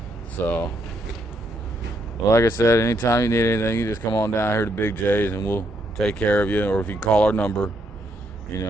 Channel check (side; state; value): both; normal; correlation 0.75